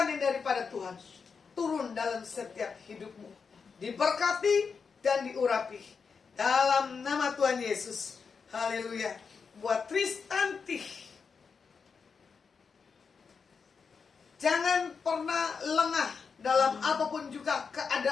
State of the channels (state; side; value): quieter; right; 5.5 dB